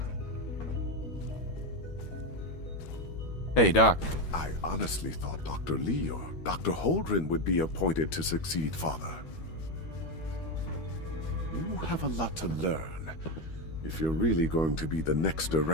Hey, Doc. I honestly thought Dr. Lee or Dr. Holdren would be appointed to succeed Father. You have a lot to learn if you're really going to be the next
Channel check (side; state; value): right; late; 13 ms